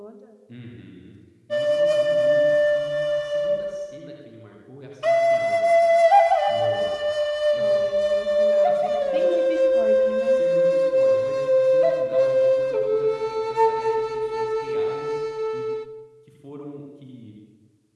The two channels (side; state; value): both; identical; correlation 1.00